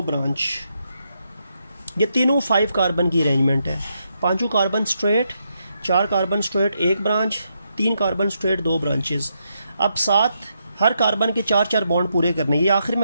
ब्रांच। ये तीनों 5 कार्बन की अरेंजमेंट है। 5 carbon straight, 4 carbon straight 1 branch, 3 carbon straight 2 branches. अब 7 हर कार्बन के 4 बॉन्ड पूरे करने। ये आखिर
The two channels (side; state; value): both; inverted; correlation -0.81